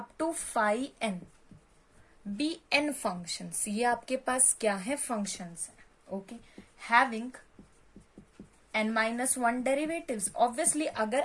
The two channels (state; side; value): identical; both; correlation 1.00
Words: to five n be n functions. ये आपके पास क्या है? फंक्शंस है। Okay, having n minus one derivatives. Obviously अगर